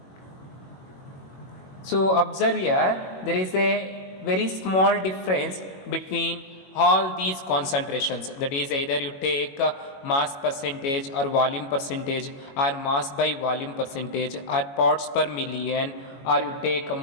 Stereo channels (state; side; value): late; right; 22 ms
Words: So observe here, there is a very small difference between all these concentrations, that is either you take mass percentage or volume percentage or mass by volume percentage or parts per million, or you take a